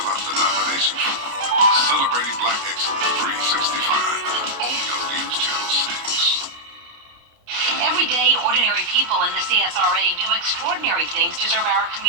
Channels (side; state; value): left; late; 29 ms